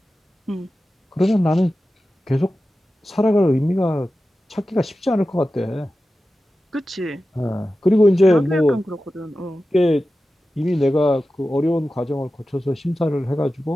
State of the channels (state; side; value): normal; both; correlation 0.94